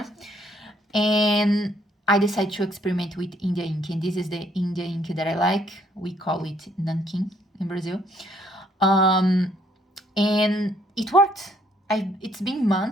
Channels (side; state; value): both; normal; correlation 0.67